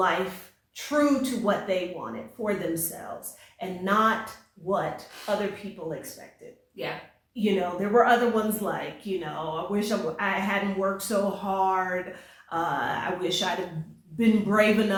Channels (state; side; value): identical; both; correlation 1.00